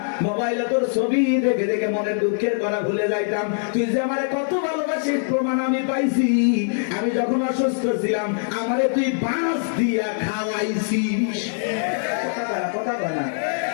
মোবাইলে তোর ছবি দেখে দেখে মনের দুঃখের কথা ভুলে যাইতাম। তুই যে আমার কত ভালোবাসিস প্রমাণ আমি পাইছি। আমি যখন অসুস্থ ছিলাম, আমারে তুই বাঁশ দিয়া খাওয়াইছিস। কথা বলে না।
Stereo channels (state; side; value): silent; right; digital silence